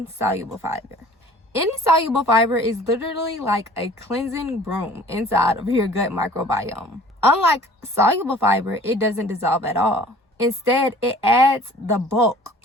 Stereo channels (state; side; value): normal; both; correlation 0.49